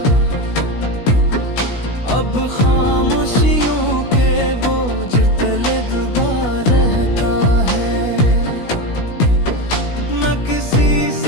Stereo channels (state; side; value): late; right; 16 ms